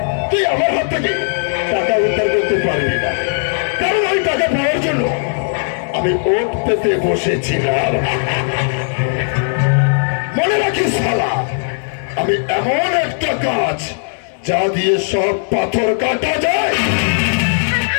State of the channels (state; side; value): silent; right; digital silence